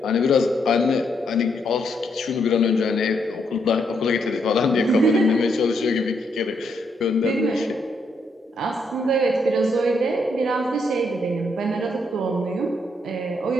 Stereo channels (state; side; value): normal; both; correlation 0.76